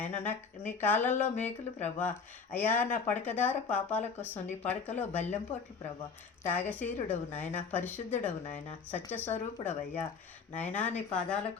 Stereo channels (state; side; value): quieter; right; 5.4 dB